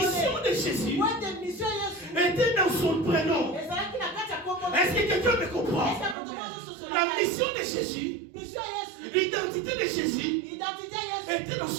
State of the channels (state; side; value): drops out; left; at 6.2 s